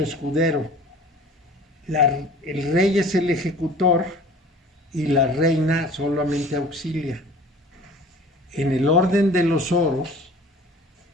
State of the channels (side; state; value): both; normal; correlation 0.46